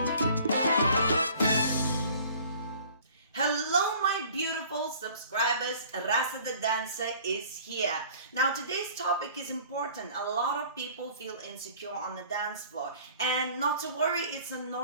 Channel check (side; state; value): both; inverted; correlation -0.50